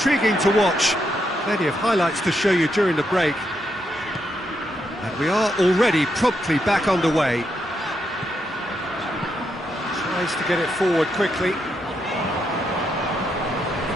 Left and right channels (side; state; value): both; normal; correlation 0.80